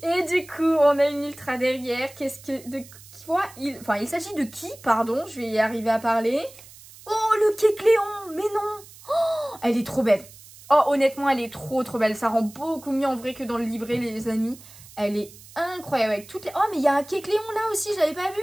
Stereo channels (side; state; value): right; noise; hiss, 20 dB below the sound